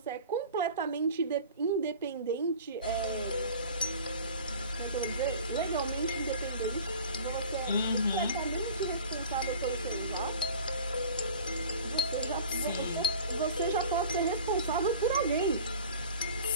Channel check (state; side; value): inverted; both; correlation -0.41